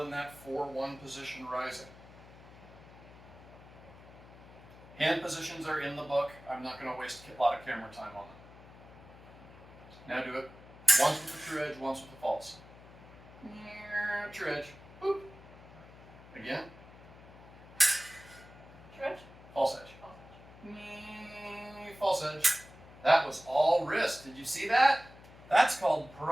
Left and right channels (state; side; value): noise; left; hum, 20 dB below the sound